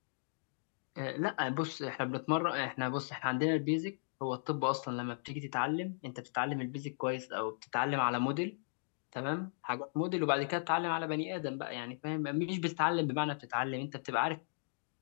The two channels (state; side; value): silent; right; digital silence